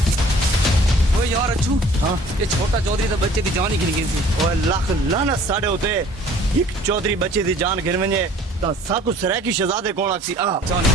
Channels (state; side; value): normal; both; correlation 0.52